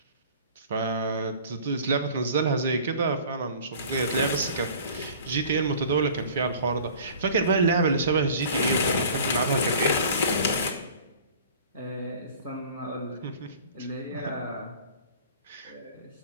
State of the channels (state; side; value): inverted; both; correlation -0.46